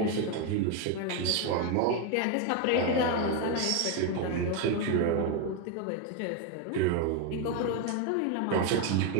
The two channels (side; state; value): both; different; correlation 0.02